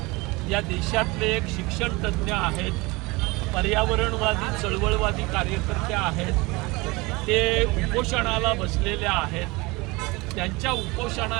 या देशातले एक शिक्षण तज्ज्ञ आहेत, पर्यावरणवादी चळवळवादी कार्यकर्ते आहेत। ते उपोषणाला बसलेले आहेत। त्यांच्या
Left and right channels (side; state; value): left; quieter; 24.0 dB